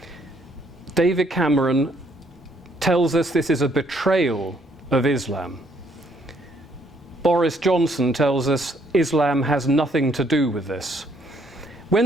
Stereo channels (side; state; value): both; normal; correlation 0.67